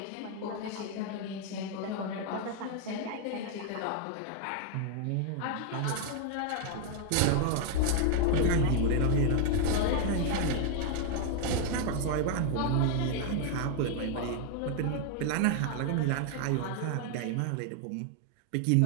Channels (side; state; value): both; different; correlation 0.00